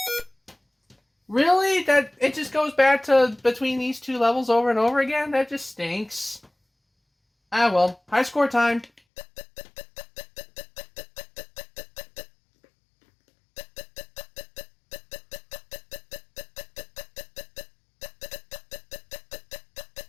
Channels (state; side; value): drops out; right; at 9.0 s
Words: Really? That it just goes back to between these two levels over and over again? That just stinks. Ah well, high score time.